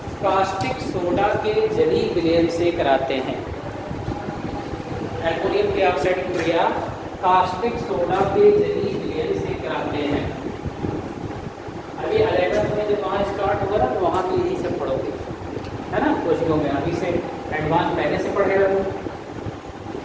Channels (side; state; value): both; identical; correlation 1.00